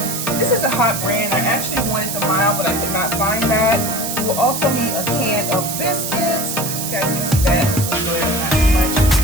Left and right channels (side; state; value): right; noise; hiss, 4 dB below the sound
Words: This is a hot brand. I actually wanted the mild, but I could not find that. You will also need a can of biscuits. You guys can see that. It's a little bit, not too much.